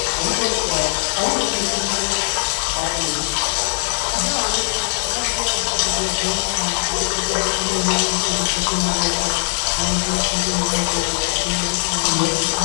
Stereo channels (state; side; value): silent; right; digital silence